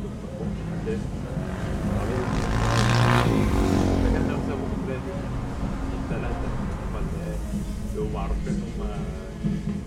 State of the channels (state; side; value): identical; both; correlation 1.00